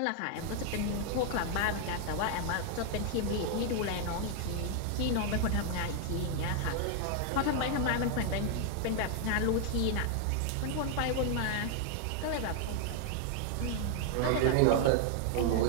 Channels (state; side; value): different; both; correlation 0.00